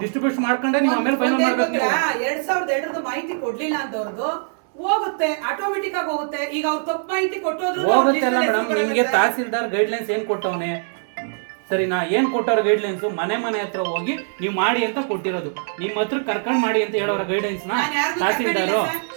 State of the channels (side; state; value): left; silent; 64 dB below the other